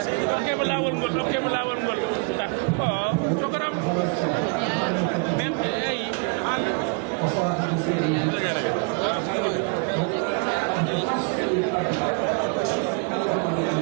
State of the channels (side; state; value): left; quieter; 35.9 dB